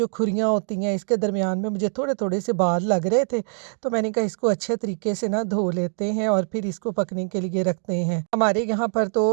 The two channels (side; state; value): left; silent; digital silence